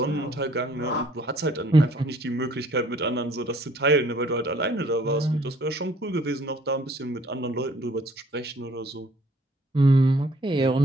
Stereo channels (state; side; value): normal; both; correlation 0.59